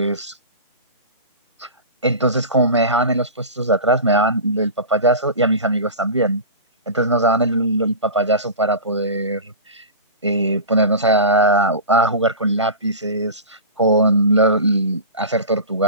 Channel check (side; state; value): both; inverted; correlation -0.30